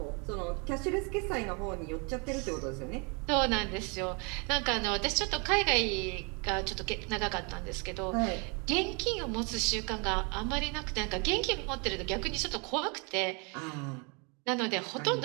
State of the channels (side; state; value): left; quieter; 32.7 dB